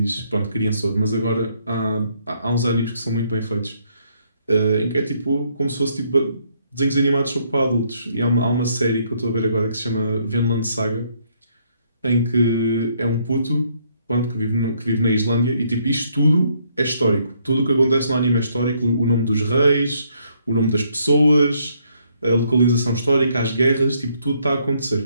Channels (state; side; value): inverted; both; correlation -0.70